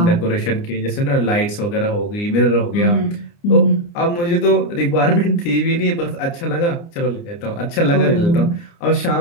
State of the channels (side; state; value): right; late; 29 ms